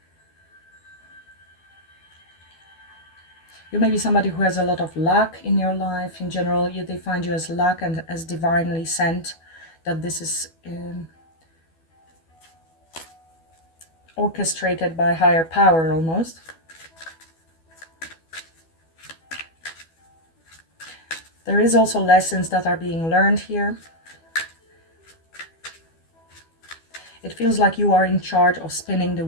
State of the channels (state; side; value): late; right; 12 ms